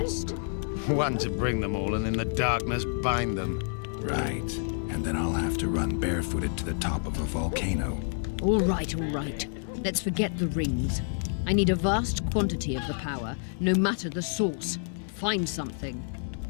One to bring them all and in the darkness bind them. Right. And then I'll have to run barefooted to the top of a volcano. All right. Let's forget the rings. I need a vast quantity of the power, no matter the source. Find something.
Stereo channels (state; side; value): silent; right; digital silence